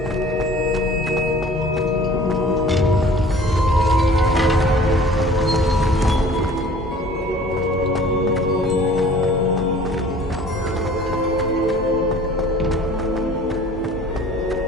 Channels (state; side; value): normal; both; correlation 0.48